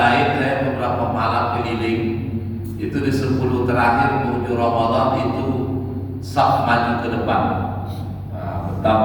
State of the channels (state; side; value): identical; both; correlation 1.00